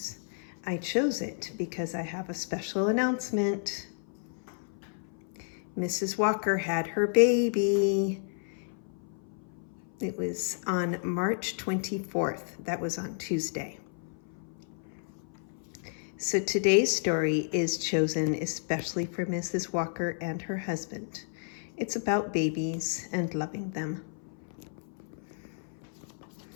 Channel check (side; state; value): right; silent; 56 dB below the other